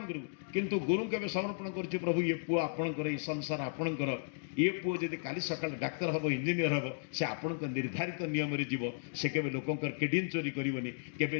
କରିବୁ, କିନ୍ତୁ ଗୁରୁଙ୍କୁ ଏବେ ସମର୍ପଣ କରୁଛୁ। ପ୍ରଭୁ ଇଏ ପୁଅ ଆପଣଙ୍କର, ଏଇ ସଂସାର ଆପଣଙ୍କର, ଇଏ ପୁଅ ଯଦି କାଲି ସକାଳେ ଡାକ୍ତର ହେବ, ଇଞ୍ଜିନିୟର ହେବ, ସେ ଆପଣଙ୍କ ନିର୍ଦ୍ଧାରିତ ନିୟମରେ ଯିବ, ସେ କେବେ ଲୋକଙ୍କର କିଡନୀ ଚୋରି କରିବନି, କେବେ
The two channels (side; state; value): right; silent; digital silence